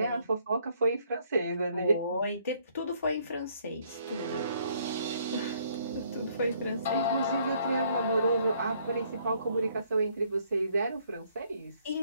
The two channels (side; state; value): both; inverted; correlation -0.66